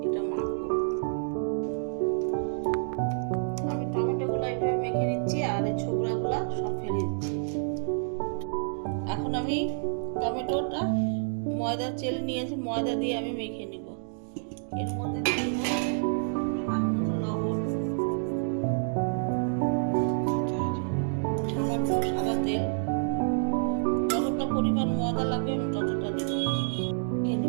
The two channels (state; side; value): silent; left; digital silence